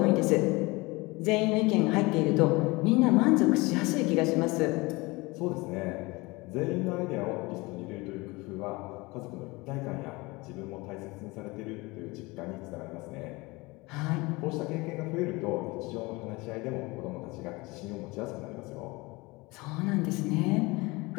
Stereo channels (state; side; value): quieter; right; 23.7 dB